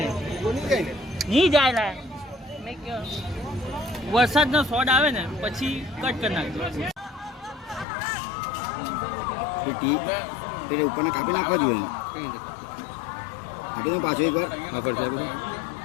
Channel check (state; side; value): drops out; right; at 7.9 s